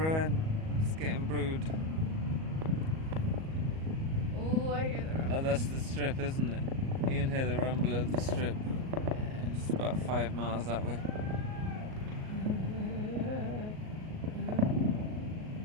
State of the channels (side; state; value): left; late; 38 ms